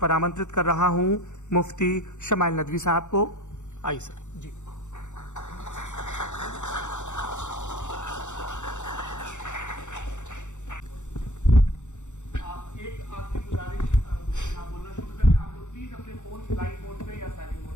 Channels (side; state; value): right; late; 0.84 ms